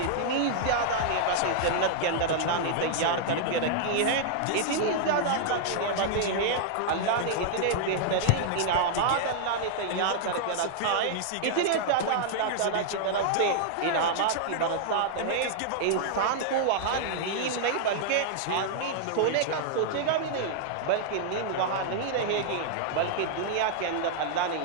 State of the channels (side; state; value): both; different; correlation -0.01